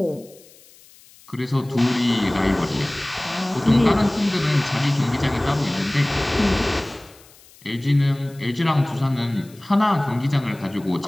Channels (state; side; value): noise; left; hiss, 25 dB below the sound